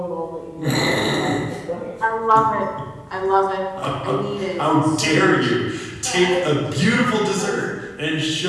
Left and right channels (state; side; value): identical; both; correlation 1.00